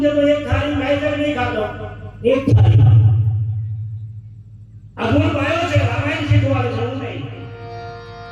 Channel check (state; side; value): identical; both; correlation 1.00